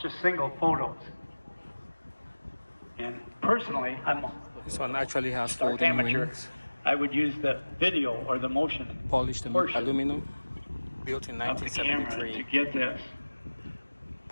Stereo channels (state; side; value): inverted; both; correlation -1.00